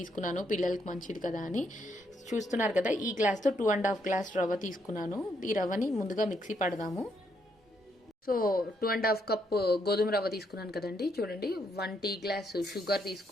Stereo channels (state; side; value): normal; both; correlation 0.75